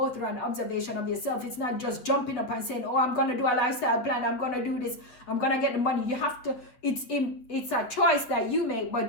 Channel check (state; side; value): late; right; 8.3 ms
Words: through an observation of yourself. It's not just jumping up and saying, oh, I'm going to do a lifestyle plan, I'm going to do this, I'm going to get the money. You have to, it's a choice that you make,